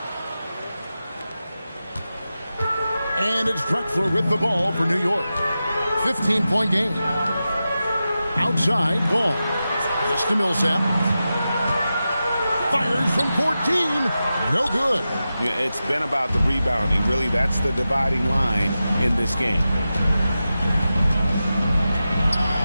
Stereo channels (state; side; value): inverted; both; correlation -0.92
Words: And it's Drexler with the ball for New York. 15-point game. Outside, Ball. Just to Millsap. Fires from 14. No good. Yeah, it's been about the rebounding. Really, that's the dividing line in this game.